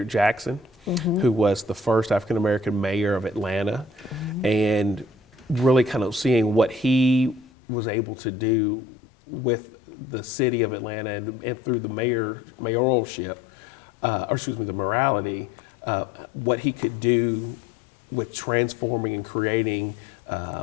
Jackson, who was the first African-American mayor of Atlanta, and really kind of seeing what he was able to do with the city of Atlanta and through the mayoralship, the morality, what he could do with transforming and creating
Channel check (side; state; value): right; drops out; at 7.5 s